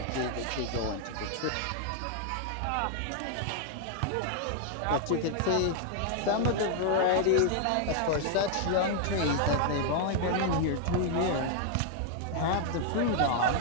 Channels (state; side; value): different; both; correlation 0.00